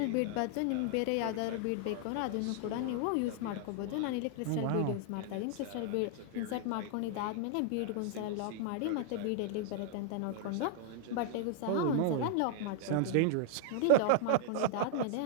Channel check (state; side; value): different; both; correlation 0.00